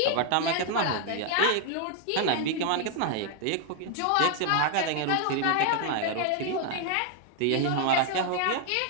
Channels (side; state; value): both; different; correlation 0.00